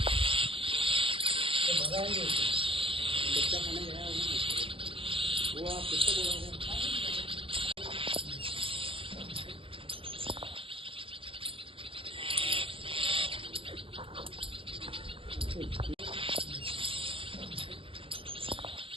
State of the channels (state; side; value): late; left; 0.26 ms